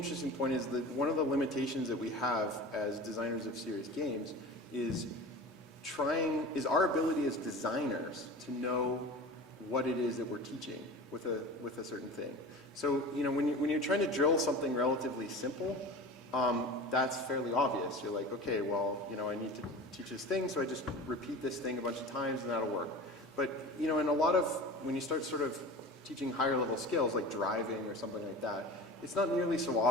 point is that one of the limitations that we have as designers of serious games is our ability as designers to know what it is that we're teaching with a certain thing. So when you're trying to drill something relatively simple, that's fairly obvious. You're like, okay, well, I need to teach this thing, so I just repeat this thing a bunch of times and that'll work. But in a lot of, when you start sort of teaching higher level skills like driving or something like that, it's not nearly so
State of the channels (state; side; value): normal; both; correlation 0.35